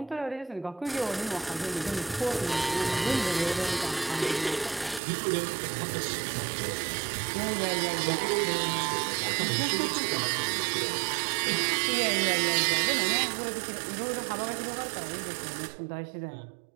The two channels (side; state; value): left; drops out; at 5.0 s